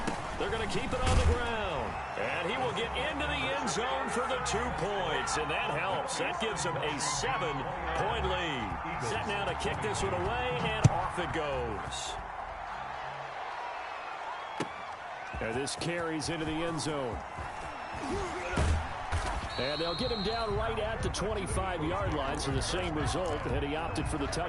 They're going to keep it on the ground. And he will get into the end zone for the 2 points. And that helps. That gives him a 7-point lead. Set now to kick this one away, and off it goes. And this carries into the end zone. And they'll get him down right at the 25-yard line, so the same result, and he opted for the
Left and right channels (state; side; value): identical; both; correlation 1.00